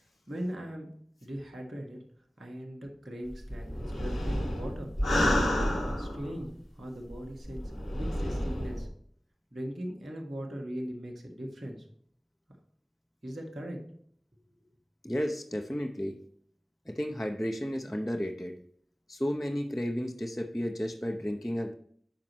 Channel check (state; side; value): normal; both; correlation 0.96